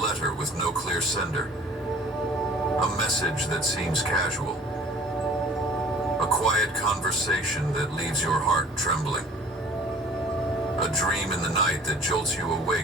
with no clear sender, a message that seems casual, a quiet conversation that leaves your heart trembling, a dream in the night that jolts you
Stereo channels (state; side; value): normal; both; correlation 0.49